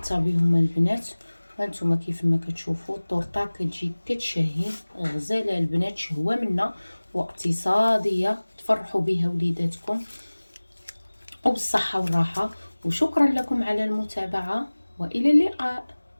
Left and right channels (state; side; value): inverted; both; correlation -1.00